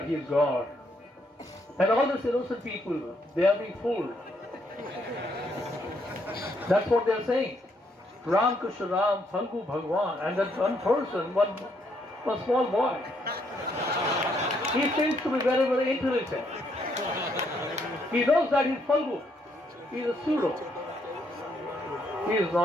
he is God. And all these innocent people, they are being fooled. That's what they are saying. Ram Krishna Ram, Phalgu Bhagwan, and that one person, one small boy. He seems to be very, very intelligent. He knows that he's Phalgu. He is a pseudo. He is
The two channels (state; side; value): normal; both; correlation 0.73